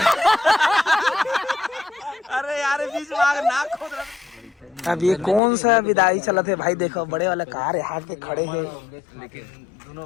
अरे यार बीच में आग नाक खोद रहा। अब ये कौन सा विदाई चला थे भाई, देखो बड़े वाला कार यहाँ के खड़े हैं। लेकिन दोनों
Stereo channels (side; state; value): right; drops out; at 5.4 s